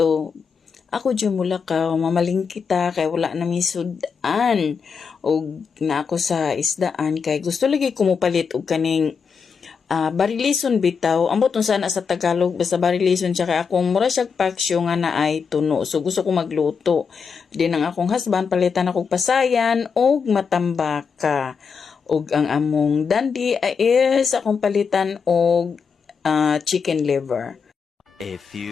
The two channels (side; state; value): right; quieter; 5.9 dB